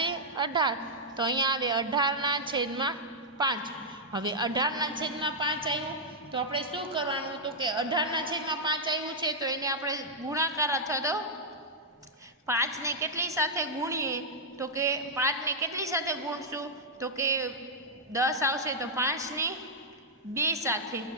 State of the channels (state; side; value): normal; both; correlation -0.06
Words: 18. તો અહીંયા આવે 18/5. હવે 18/5 આવ્યું તો આપણે શું કરવાનું? તો કે 18/5 આવ્યું છે તો એને આપણે ગુણાકાર અથવા તો 5 ને કેટલી સાથે ગુણીએ? તો કે 5 ને કેટલી સાથે ગુણશું? તો કે 10 આવશે તો 5 ને 2 સાથે.